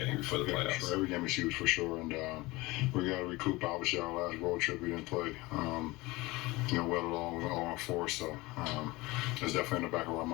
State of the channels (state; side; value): quieter; right; 21.6 dB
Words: before the playoffs. Sure. Every game is huge for sure, and we got to recoup. Obviously, our last road trip we didn't play. Well along 0-4, so it's definitely in the back of our